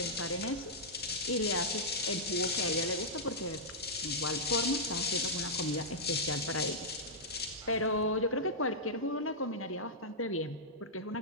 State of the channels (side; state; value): both; normal; correlation -0.10